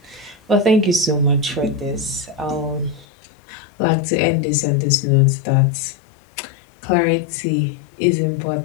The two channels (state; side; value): drops out; right; at 3.1 s